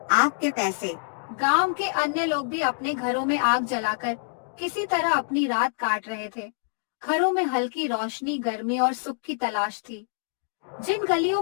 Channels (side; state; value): right; silent; digital silence